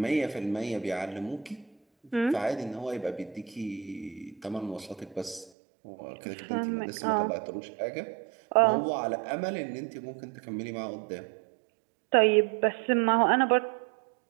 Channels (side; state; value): left; drops out; at 5.5 s